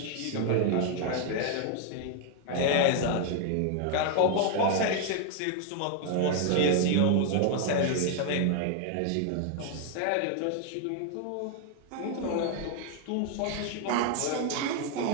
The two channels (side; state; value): both; different; correlation 0.00